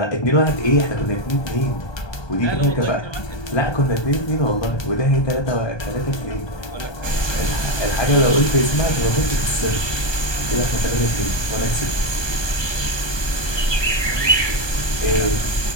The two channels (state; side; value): late; right; 1.2 ms